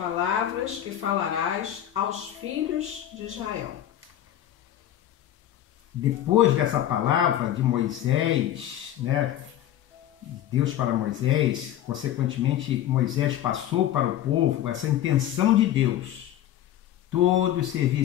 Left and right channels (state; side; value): quieter; right; 11.9 dB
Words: que falarás aos filhos de Israel. Depois dessa palavra de Moisés, Deus para Moisés, consequentemente Moisés passou para o povo essa intenção de Deus. Todos